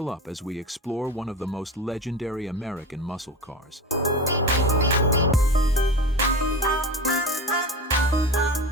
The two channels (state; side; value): normal; both; correlation 0.28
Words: up as we explore one of the most legendary American muscle cars.